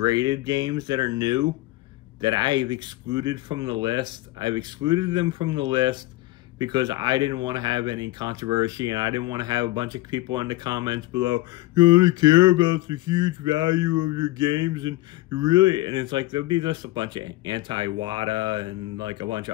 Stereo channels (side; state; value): right; quieter; 18.3 dB